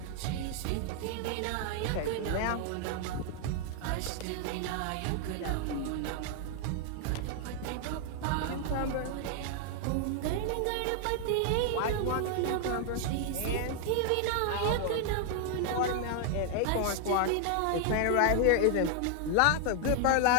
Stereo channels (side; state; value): both; different; correlation 0.00